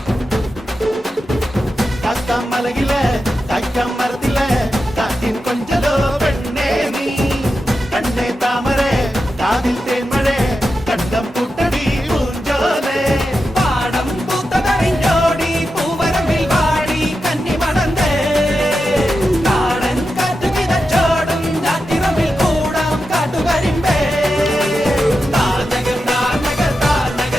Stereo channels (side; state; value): both; normal; correlation 0.89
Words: മലകിലെ തക്കം മരത്തിലെ കാറ്റിൻ കൊഞ്ചലോ പെണ്ണേ നീ കണ്ണേ താമരേ കാതിൽ തേന്മഴേ കണ്ടം പൂട്ടടി പൂഞ്ചോലേ പാടം പൂത്തതറിഞ്ഞോടി പൂവരമ്പിൽ വാടി കന്നി മണന്തേ കാടൻ കാറ്റു കിതച്ചോടും ഞാറ്റിറമ്പിൽ കൂടാം കാട്ടുകരിമ്പേ താനകർ താനകർ